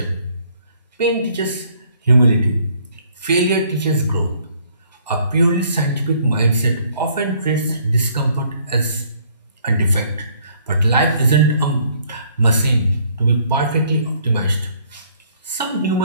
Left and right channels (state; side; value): inverted; both; correlation -0.63